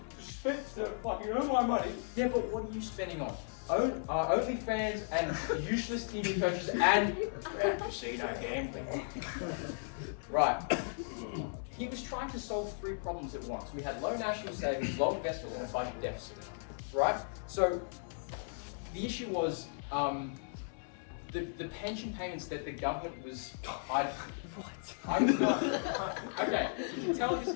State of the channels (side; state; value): right; silent; 54 dB below the other